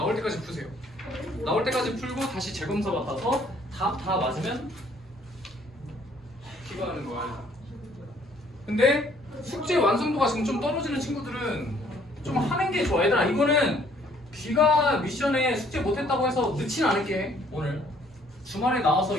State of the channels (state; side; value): normal; both; correlation 0.62